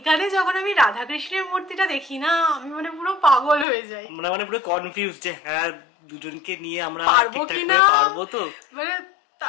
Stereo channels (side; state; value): right; drops out; at 3.7 s